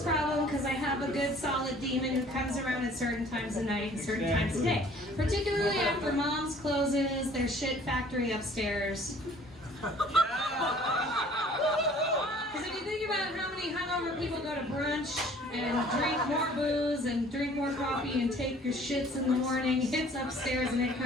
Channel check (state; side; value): normal; both; correlation 0.53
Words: problem because I have a good solid demon who comes around at certain times of night and certain times of day. Particularly after Mom's closes their shit factory upstairs. Because if you think about how many hungover people go to brunch and drink more booze and drink more coffee and take your shits in the morning, it's upstairs and it